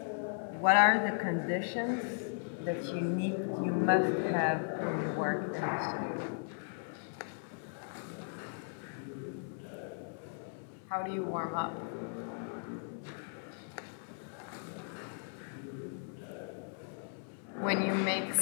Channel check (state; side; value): silent; right; 53 dB below the other